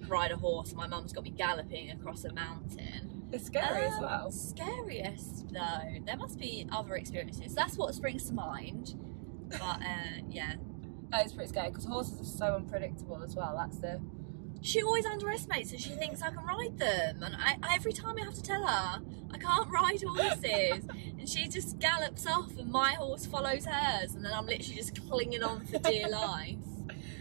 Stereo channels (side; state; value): left; silent; digital silence